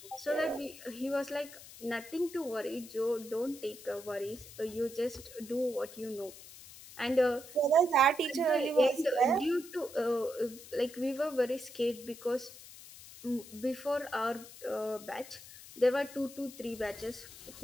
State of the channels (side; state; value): left; noise; hiss, 17 dB below the sound